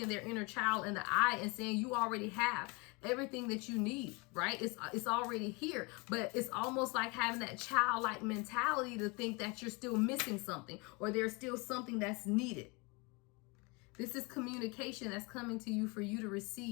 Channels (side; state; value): right; quieter; 28.3 dB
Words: their inner child in the eye and saying, you already have everything that you need, right? It's already here. But it's almost like having that childlike mentality to think that you're still missing something, or there's still something that's needed. This is communication that's coming to you for you to